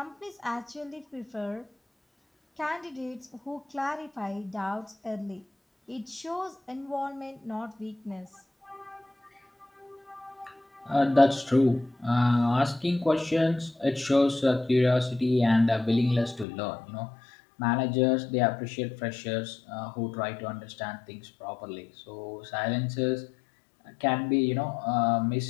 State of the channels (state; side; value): drops out; right; at 16.4 s